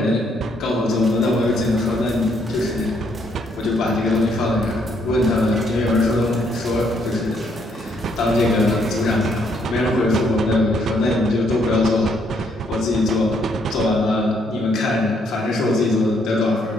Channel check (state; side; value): normal; both; correlation 0.71